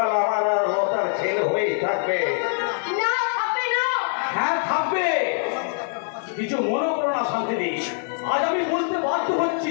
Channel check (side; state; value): right; silent; 57 dB below the other